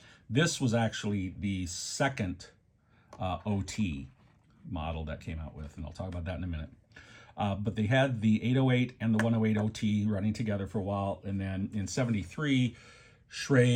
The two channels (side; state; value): both; identical; correlation 1.00